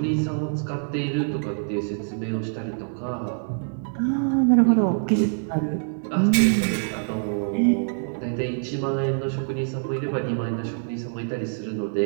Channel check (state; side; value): silent; left; digital silence